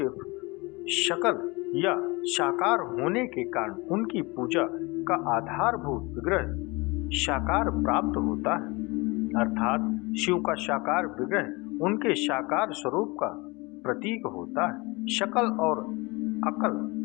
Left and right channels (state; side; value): quieter; right; 25.2 dB